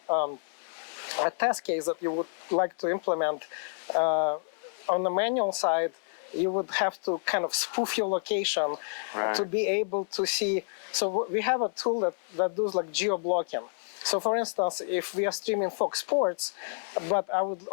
a test case that you would like to implement on the manual side, you would have to kind of spoof your location to be able to see. So we have a tool that does like geo-blocking. So for instance, if we are streaming Fox Sports, but I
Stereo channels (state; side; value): silent; right; 58 dB below the other